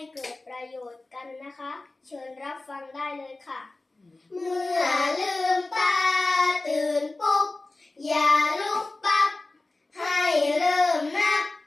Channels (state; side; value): quieter; right; 3.1 dB